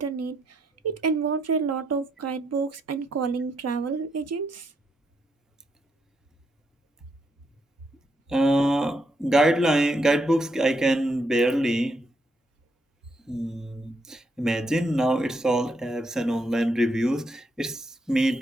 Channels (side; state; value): both; normal; correlation 0.77